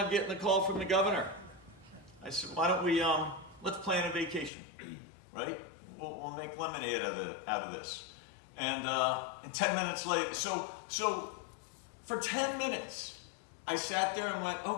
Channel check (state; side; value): drops out; right; at 4.5 s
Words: getting a call from the governor. I said, why don't we, let's plan a vacation, right? We'll make lemonade out of this. And 10 minutes later, so for 10 minutes, I sat there and went,